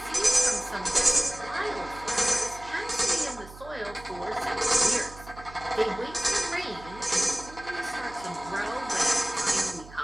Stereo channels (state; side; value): noise; right; hum, 18 dB below the sound